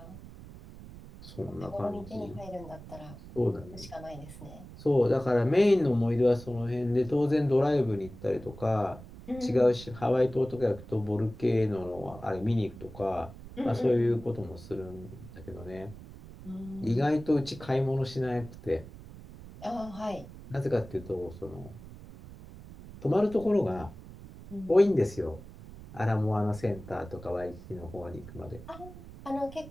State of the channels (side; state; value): right; noise; rumble, 16 dB below the sound